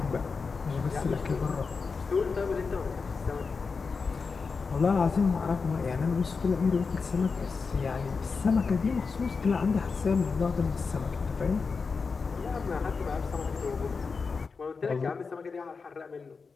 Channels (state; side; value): quieter; right; 4.9 dB